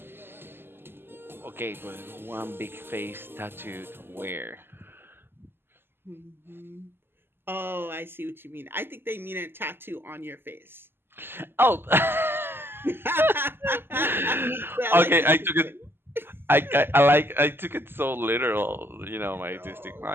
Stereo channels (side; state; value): left; late; 0.11 ms